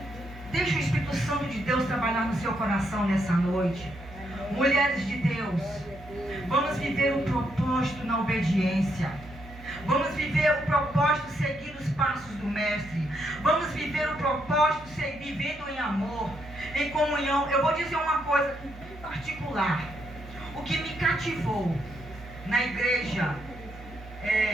deixe o Espírito Santo de Deus trabalhar no seu coração nessa noite. Mulheres de Deus, vamos viver o propósito na obediência. Vamos viver o propósito seguindo os passos do Mestre. Vamos viver o propósito vivendo em amor, em comunhão. Eu vou dizer uma coisa em particular. O que me cativou na igreja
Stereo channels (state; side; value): normal; both; correlation 0.77